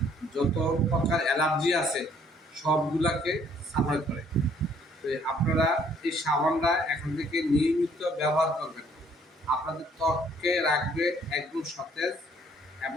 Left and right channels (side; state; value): both; normal; correlation 0.62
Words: যত প্রকার অ্যালার্জি আছে সবগুলাকে সাফাই করে। তো আপনারা এই সাবানটা এখন থেকে নিয়মিত ব্যবহার করবেন। আপনাদের ত্বককে রাখবে একদম সতেজ